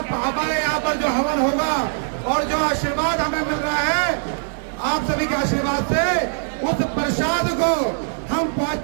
हमारे यहाँ पर जो हवन होगा और जो आशीर्वाद हमें मिल रहा है आप सभी के आशीर्वाद से, उस प्रसाद को हम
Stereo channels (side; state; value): left; silent; 65 dB below the other